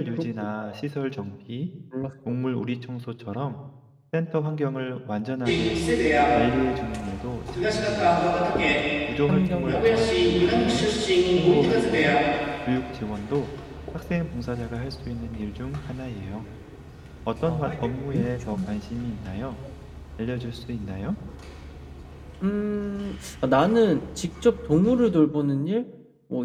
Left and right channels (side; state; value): both; identical; correlation 1.00